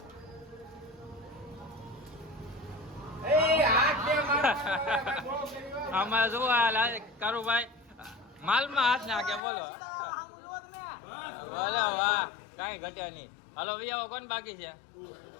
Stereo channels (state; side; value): drops out; right; at 9.4 s